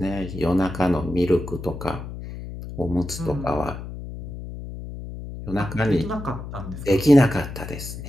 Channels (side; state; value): left; noise; hum, 10 dB below the sound